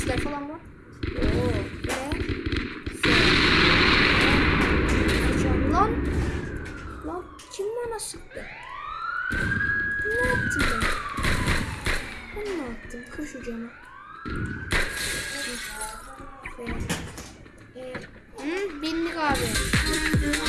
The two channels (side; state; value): both; identical; correlation 1.00